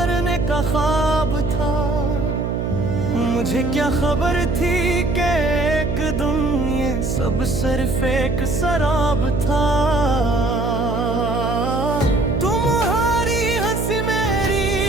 का ख्वाब था। मुझे क्या खबर थी कि एक दिन ये सब सिर्फ एक शराब था। तुम्हारी हंसी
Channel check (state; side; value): noise; right; hum, 1 dB below the sound